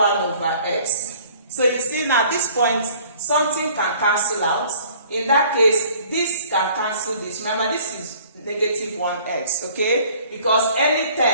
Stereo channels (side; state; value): both; inverted; correlation -0.53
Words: over x. So you see now at this point something can cancel out. In that case, this can cancel this. Remember, this is negative 1x, okay? Because any